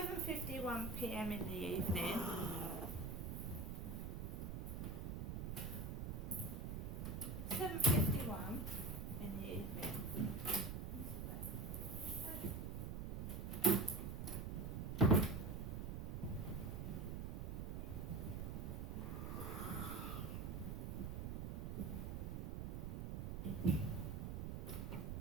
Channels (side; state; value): right; noise; rumble, 3 dB below the sound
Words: p.m. in the evening. (7:51) in the evening.